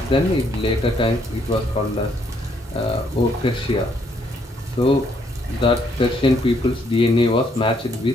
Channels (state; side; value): normal; both; correlation 0.70